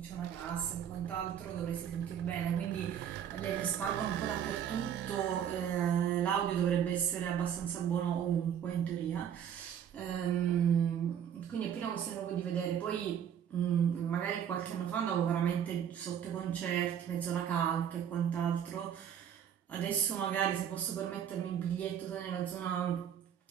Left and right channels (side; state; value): left; quieter; 9.0 dB